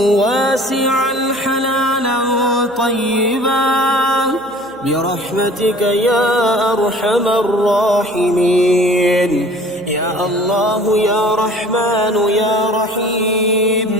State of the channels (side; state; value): right; noise; hum, 26 dB below the sound